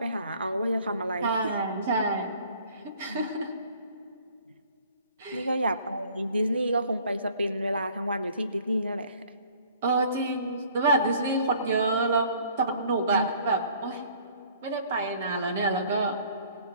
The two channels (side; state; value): both; inverted; correlation -0.55